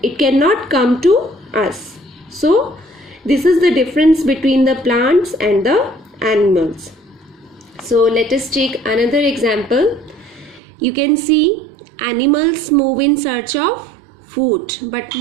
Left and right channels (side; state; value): left; drops out; at 10.6 s